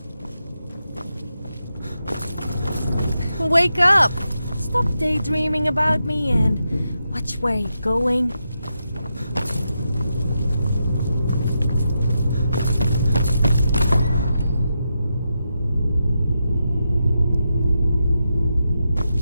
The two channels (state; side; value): inverted; both; correlation -0.86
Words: wake up! Stop daydreaming about me and watch where you're going.